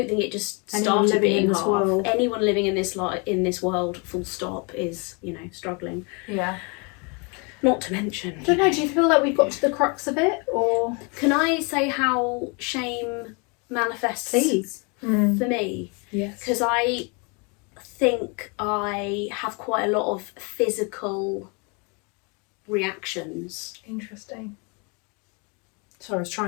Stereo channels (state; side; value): quieter; right; 32.4 dB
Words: think it just Anyone started living being in this hard. world. Anyone living in this world, full stop, is, you know, struggling. Yeah. Not to mention. I don't know, do you feel like we've got to the crux of it, or? Can I say how shame manifests for me? Yes. Because I think I have quite a lot of physical reactions. Interesting. Sorry, I was